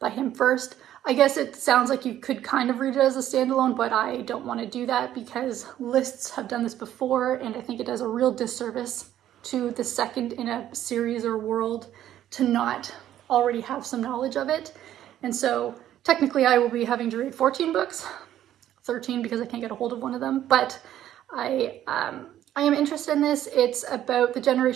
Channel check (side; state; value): left; quieter; 11.9 dB